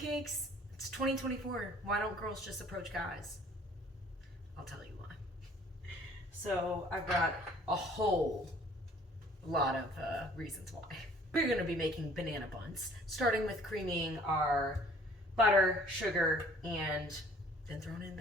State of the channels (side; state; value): both; normal; correlation 0.55